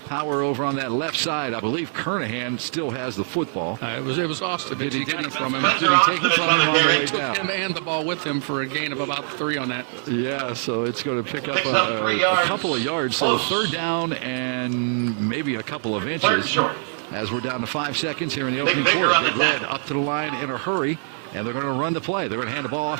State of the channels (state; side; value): silent; left; digital silence